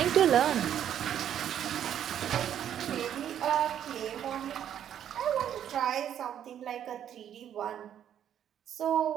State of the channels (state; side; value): quieter; left; 9.9 dB